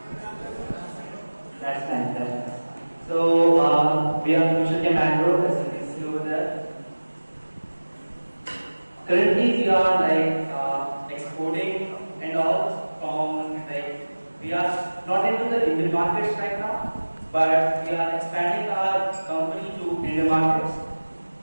That's nice. So, we are Future Chem Agro, as you can see over there. Currently, we are exporting and all from we are not into the Indian markets right now, but we are expanding our company to Indian markets.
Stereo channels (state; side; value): inverted; both; correlation -1.00